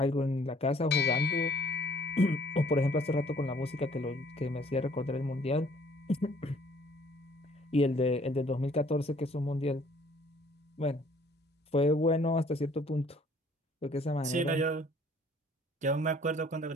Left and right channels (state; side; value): normal; both; correlation 0.58